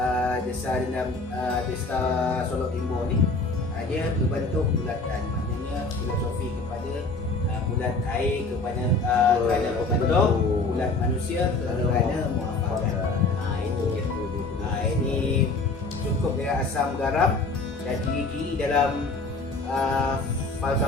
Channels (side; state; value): right; quieter; 3.5 dB